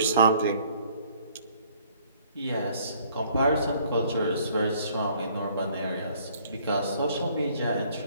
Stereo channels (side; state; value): both; inverted; correlation -0.60